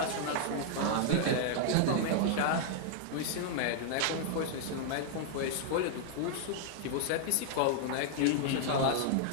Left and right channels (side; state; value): both; different; correlation 0.00